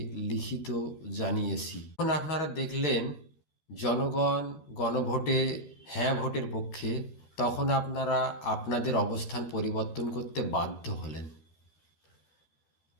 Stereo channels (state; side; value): late; right; 12 ms